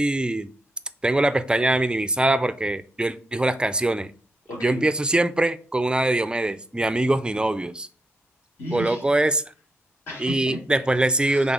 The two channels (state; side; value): normal; both; correlation 0.82